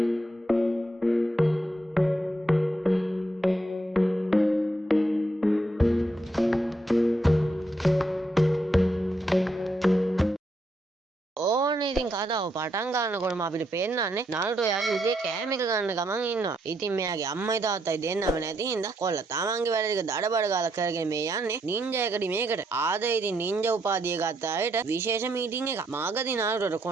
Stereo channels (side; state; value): both; normal; correlation 0.77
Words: ඉතින් කතාව පටන් ගන්නකොටම අපිට පේන්නන්නේ නාරුටෝ යාගේ උගේ කෑම එක ගන්න ගමන් ඉන්නවා. ඉතින් මෙයාගේ අම්මයි තාත්තයි දෙන්නම නැති හින්දා කොල්ල තමන්ගේ වැඩ ටික දඩබඩ ගාලා කරගෙන මේ යන්නේ නින්ජා එකඩමියකට. ආද ඉතින් නින්ජා උපාධිය ගත්ත අයට විශේෂ මීටින් එකක්. මාගදී නාරුටෝට